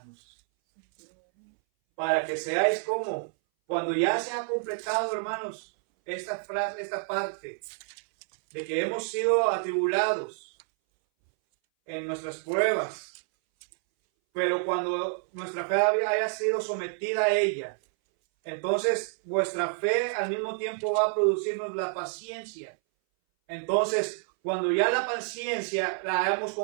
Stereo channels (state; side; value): silent; left; 59 dB below the other